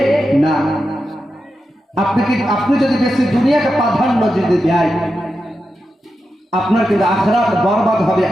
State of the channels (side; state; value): both; normal; correlation 0.89